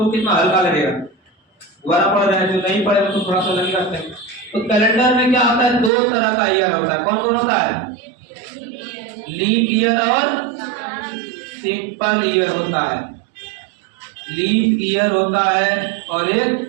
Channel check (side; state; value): left; drops out; at 5.9 s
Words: कितना हल्का लगेगा, दोबारा पढ़ रहे हैं, जो नहीं पढ़े तो थोड़ा सा लगेगा। तो कैलेंडर में क्या होता है, दो तरह का ईयर होता है। कौन कौन होता है? लीप ईयर और सिंपल ईयर होता है। लीप ईयर होता है और एक